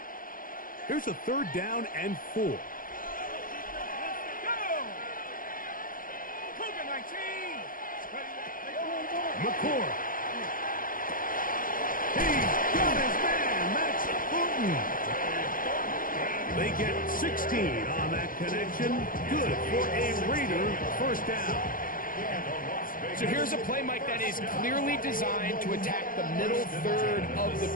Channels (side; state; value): right; late; 0.40 ms